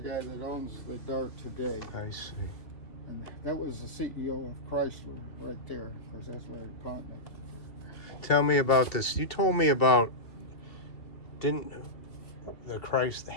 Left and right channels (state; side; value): late; right; 2.7 ms